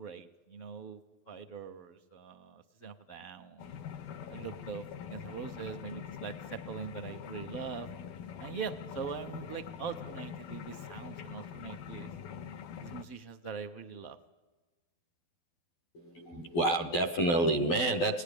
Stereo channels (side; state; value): right; late; 12 ms